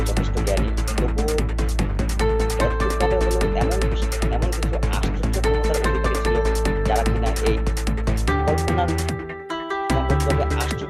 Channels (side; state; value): both; identical; correlation 1.00